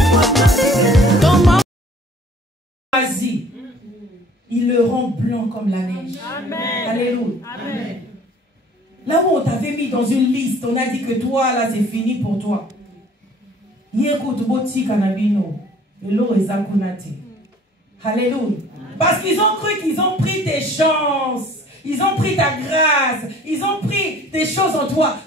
Vas-y, il le rend blanc comme la neige. Amen. Alléluia. Amen. Là où on t'avait mis dans une liste, on a dit que toi, là, c'est fini pour toi. Alléluia. Parce qu'ils ont cru qu'ils ont pris tes chances. Ils ont pris ta grâce. Ils ont pris des choses en toi.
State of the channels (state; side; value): normal; both; correlation 0.53